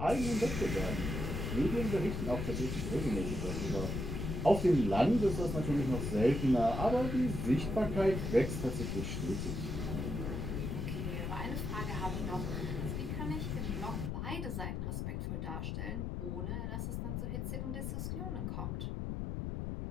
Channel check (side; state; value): left; noise; rumble, 3 dB below the sound